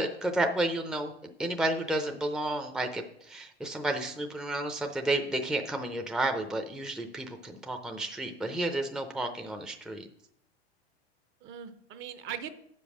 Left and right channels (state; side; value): normal; both; correlation 0.71